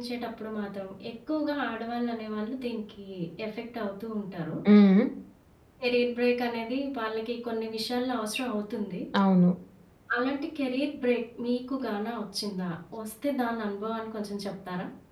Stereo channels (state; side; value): identical; both; correlation 1.00